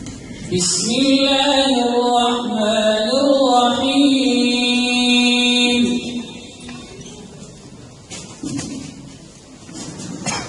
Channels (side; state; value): both; identical; correlation 1.00